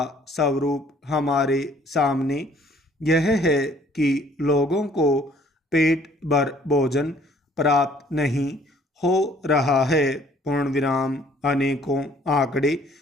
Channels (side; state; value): both; normal; correlation 0.59